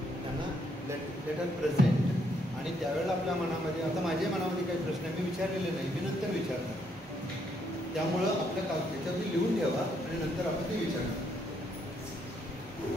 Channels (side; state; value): both; normal; correlation 0.73